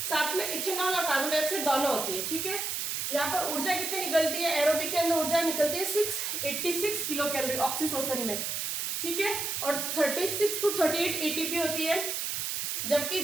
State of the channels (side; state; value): right; noise; hiss, 2 dB below the sound